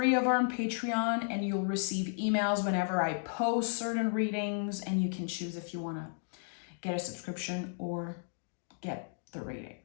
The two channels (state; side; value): silent; right; digital silence